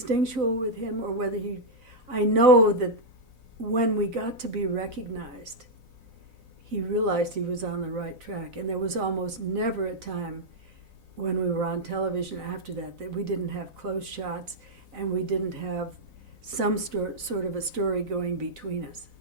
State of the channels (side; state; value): left; late; 4.0 ms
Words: with him or whether I know that when we got to be recognized, he realized he was on the right track. And there was almost never a time when we were on television after that we didn't have close shots and we didn't have some sort of a story going between us,